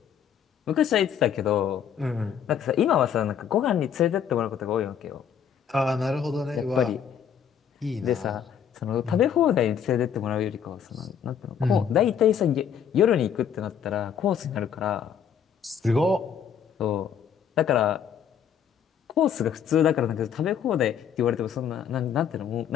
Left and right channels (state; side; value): quieter; right; 8.2 dB